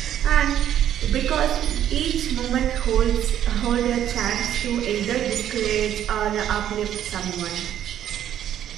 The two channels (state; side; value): quieter; left; 10.7 dB